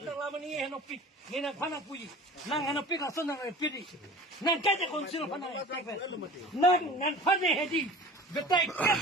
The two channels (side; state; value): both; normal; correlation 0.41